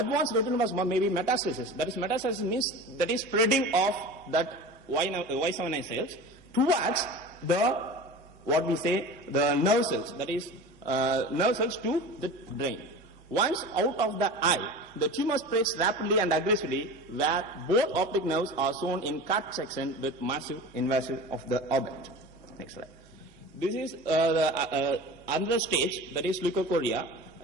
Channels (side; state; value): both; normal; correlation 0.34